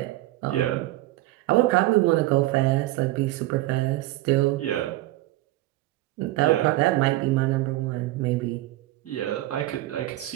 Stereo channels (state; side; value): quieter; left; 17.2 dB